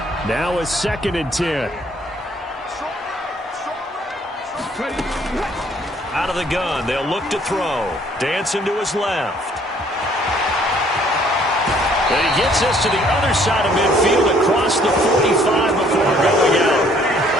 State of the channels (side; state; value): both; normal; correlation 0.61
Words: Now a 2nd and 10. Out of the gun, they'll look to throw. Dancing to his left. And he gets us to the other side of midfield across the 45 before going out.